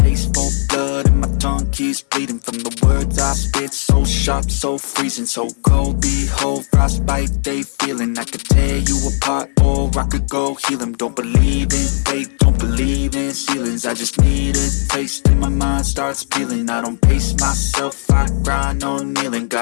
taste for blood and my tongue keeps bleeding from the words I spit. So sharp, so freezing, so cold. Behold, frostbite they feeling. I could tear you apart or I could go heal them. Don't believe in fate, don't believe in ceilings. I just need a taste and my mind starts peeling. I don't pace myself, I grind on kneeling.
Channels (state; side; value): silent; right; 57 dB below the other